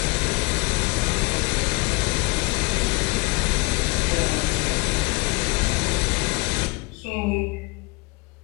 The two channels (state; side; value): quieter; right; 26.9 dB